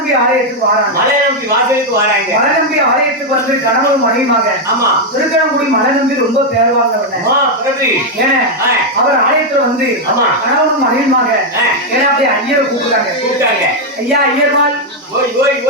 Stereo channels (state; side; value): normal; both; correlation 0.01